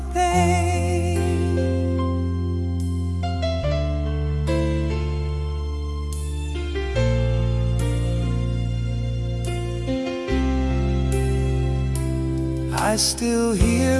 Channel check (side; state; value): both; identical; correlation 1.00